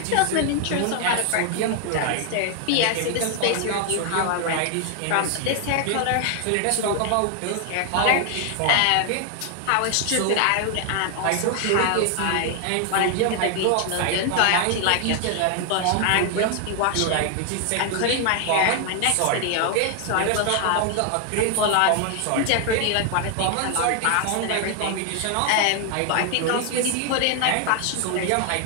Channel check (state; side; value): different; both; correlation 0.00